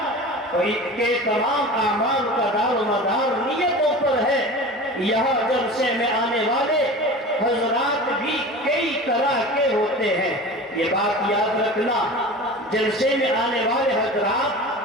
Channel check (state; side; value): normal; both; correlation 0.35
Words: اور ان کے تمام اعمال کا دار و مدار نیتوں پر ہے۔ یہاں جلسے میں آنے والے حضرات بھی کئی طرح کے ہوتے ہیں، یہ بات یاد رکھنا، جلسے میں آنے والے